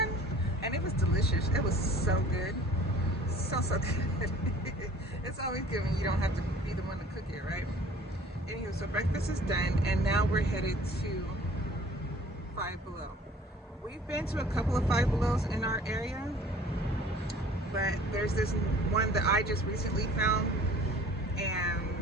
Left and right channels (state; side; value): normal; both; correlation 0.50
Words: and it was delicious. It was so good, so good. It's always good when you don't have to be the one to cook it, right? Anyway, so breakfast is done, and now we're headed to 5 Below. We've been to a couple of 5 Belows in our area, but there's this one that I just recently found, and